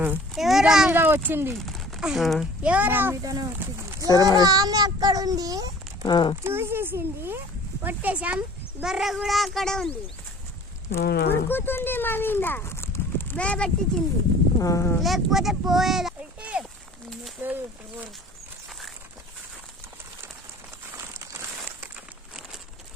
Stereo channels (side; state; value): both; normal; correlation 0.47